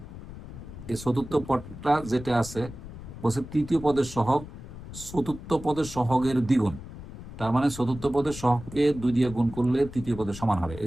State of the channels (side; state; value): left; noise; rumble, 13 dB below the sound